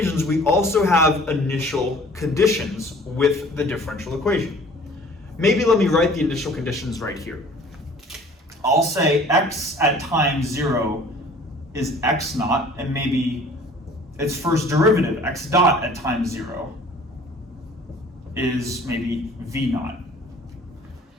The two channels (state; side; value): normal; both; correlation 0.50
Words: we also have initial conditions with the differential equation. Maybe let me write the initial conditions right here. I'll say x at time 0 is x naught, and maybe its first derivative, x dot at time 0, is maybe v naught.